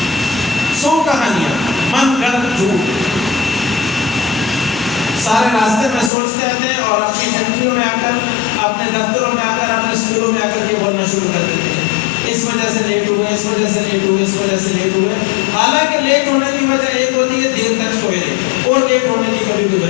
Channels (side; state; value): right; drops out; at 6.1 s